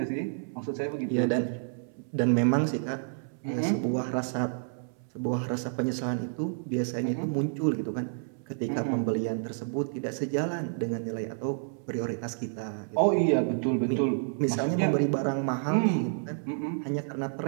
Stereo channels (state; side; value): silent; left; 58 dB below the other